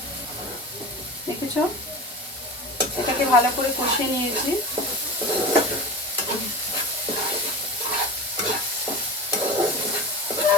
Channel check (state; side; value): normal; both; correlation 0.30